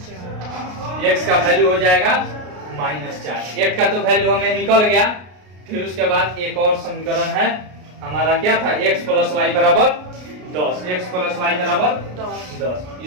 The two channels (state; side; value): late; left; 33 ms